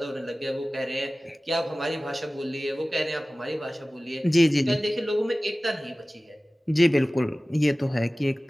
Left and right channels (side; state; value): both; normal; correlation 0.97